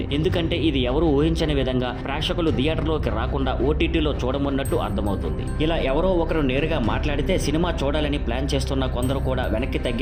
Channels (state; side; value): identical; both; correlation 1.00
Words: ఎందుకంటే ఇది ఎవరు ఊహించని విధంగా ప్రేక్షకులు థియేటర్లోకి రాకుండా ఓటీటీలో చూడమన్నట్టు అర్థమవుతుంది. ఇలా ఎవరో ఒకరు నేరుగా మాట్లాడితే సినిమా చూడాలని ప్లాన్ చేస్తున్న కొందరు కూడా వెనక్కి